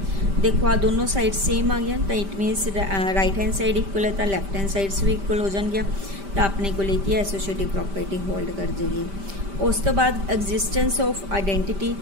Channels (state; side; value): late; left; 5.1 ms